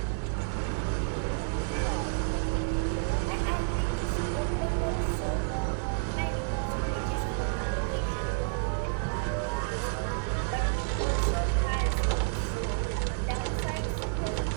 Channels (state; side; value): silent; left; 58 dB below the other